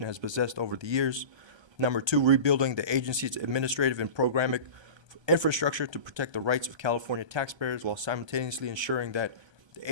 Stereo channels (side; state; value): left; late; 1.3 ms